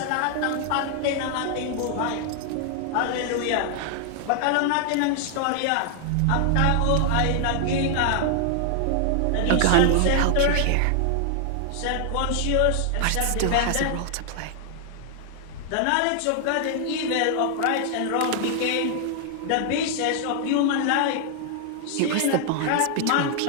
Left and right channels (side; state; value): both; different; correlation 0.00